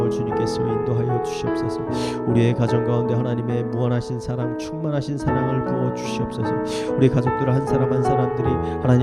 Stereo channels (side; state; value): both; identical; correlation 1.00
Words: 주님께서 인도하여 주시옵소서. 우리의 가정 가운데 하나님의 무한하신 사랑, 충만하신 사랑을 부어 주시옵소서. 우리 가족들 한 사람 한 사람들이